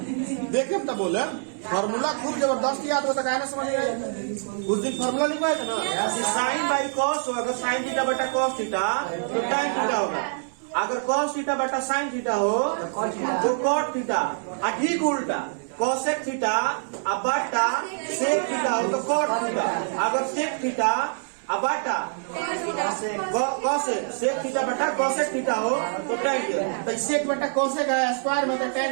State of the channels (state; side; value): silent; left; 62 dB below the other